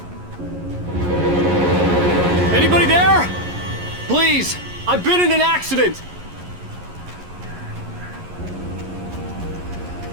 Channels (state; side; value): late; left; 11 ms